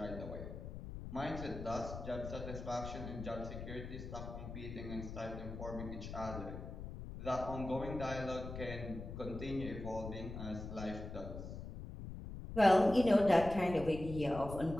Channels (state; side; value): noise; left; rumble, 9 dB below the sound